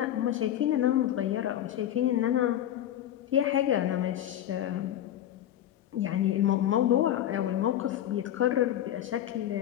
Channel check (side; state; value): right; quieter; 11.7 dB